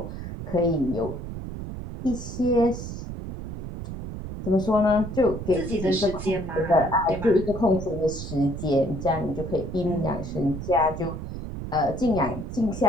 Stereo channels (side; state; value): right; noise; rumble, 8 dB below the sound